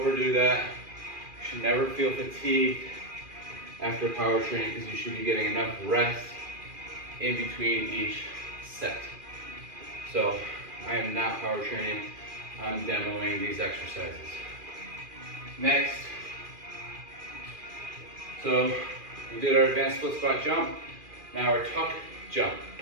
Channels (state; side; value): late; left; 2.4 ms